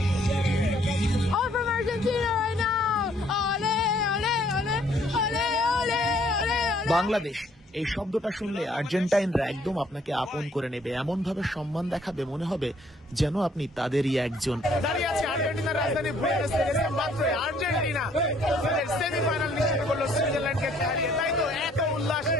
All from Argentina right now. Ole, ole, ole, ole, ole, ole, ole. Bangladesh এই শব্দটা শুনলে আর্জেন্টাইনরা একদম আপনাকে আপন করে নেবে, এমন ভাবে সম্মান দেখাবে, মনে হবে যেন আপনি তাদেরই একজন। দাঁড়িয়ে আছে আর্জেন্টিনার রাজধানী বুয়েনোস আইরেসে, মাত্র আর্জেন্টিনা তাদের সেমিফাইনাল নিশ্চিত করলো সুইজারল্যান্ডকে হারিয়ে। তাই তো এত উল্লাস,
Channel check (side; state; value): both; normal; correlation 0.63